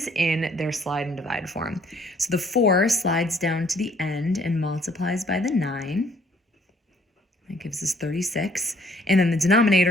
in their slide and divide form. So the 4 slides down to the end and multiplies by the 9. That gives us 36. And then the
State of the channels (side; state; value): both; normal; correlation 0.62